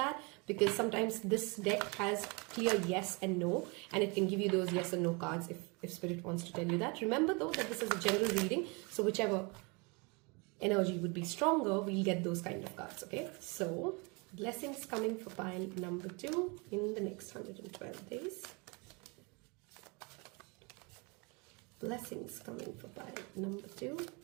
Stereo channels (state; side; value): quieter; left; 30.0 dB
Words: because sometimes this deck has clear yes and no, and it can give you those yes and no cards if Spirit wants to tell you that. Remember though that this is a general reading, so whichever energy would be stronger, we'll get those kind of cards, okay? So blessings coming for pile number 2 in the next 112 days. Blessings coming for pile number 2.